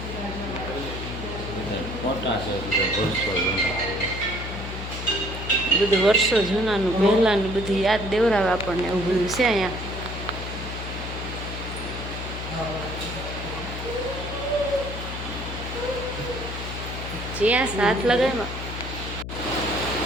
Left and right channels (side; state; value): left; noise; hum, 7 dB below the sound